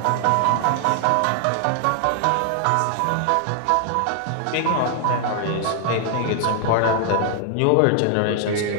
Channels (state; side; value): different; both; correlation 0.00